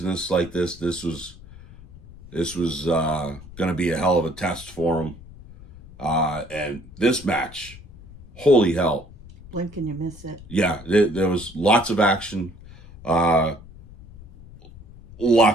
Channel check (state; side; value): noise; left; rumble, 19 dB below the sound